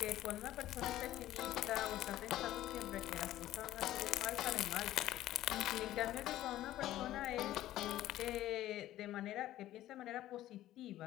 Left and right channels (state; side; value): quieter; right; 14.1 dB